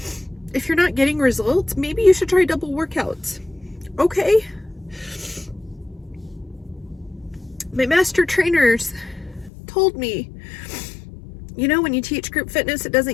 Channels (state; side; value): drops out; right; at 9.5 s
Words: if you're not getting results, maybe you should try double workouts. Okay. My master trainers told me, you know, when you teach group fitness, it